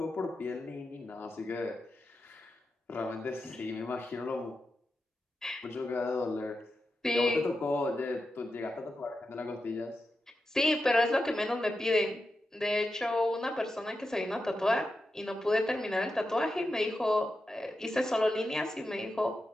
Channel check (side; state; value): both; normal; correlation 0.90